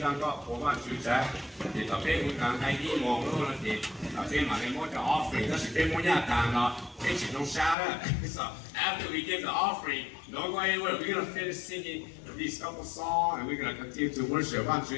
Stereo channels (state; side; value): drops out; right; at 7.8 s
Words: sang có phố mà chú trái, thì tập thế vui càng hay đi mong luôn là thì thế mà lên mỗi cái offering, nó sẽ bên mỗi nhà càng nó cái chỉ trong xa đó. So after we give the offering, don't go anywhere. We're gonna finish singing these couple songs, and we're gonna continue to worship. One chú